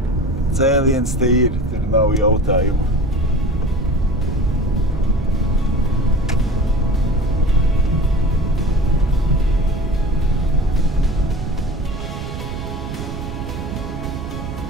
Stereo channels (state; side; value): noise; right; rumble, 7 dB below the sound